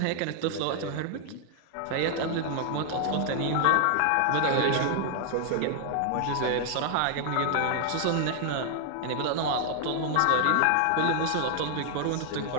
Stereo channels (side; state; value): both; different; correlation 0.00